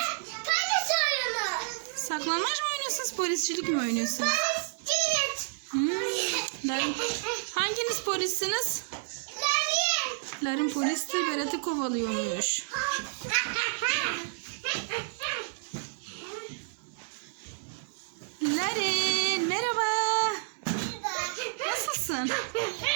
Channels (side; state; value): left; silent; digital silence